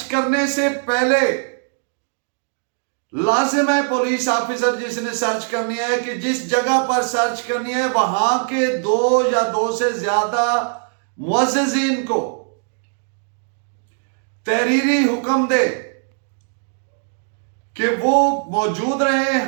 करने से पहले लाजिम है पुलिस ऑफिसर जिसने सर्च करनी है कि जिस जगह पर सर्च करनी है वहां के 2 या 2 से ज्यादा मुअज़्ज़िज़ीन को तहरीरी हुक्म दे कि वो मौजूद रहें,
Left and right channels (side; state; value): left; silent; 65 dB below the other